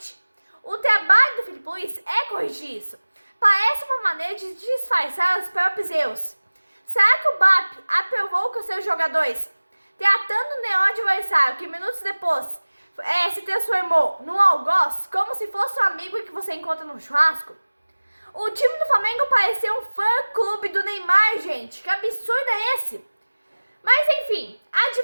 O trabalho do Felipe Luiz é corrigir isso. Parece uma maneira de disfarçar os próprios erros. Será que o BAP aprovou com seus jogadores, tratando o neon adversário que minutos depois se transformou num algoz, como se fosse um amigo que você encontra no churrasco? O time do Flamengo parecia um fã-clube do Neymar, gente. Que absurdo é esse? Mas enfim,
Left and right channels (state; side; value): inverted; both; correlation -1.00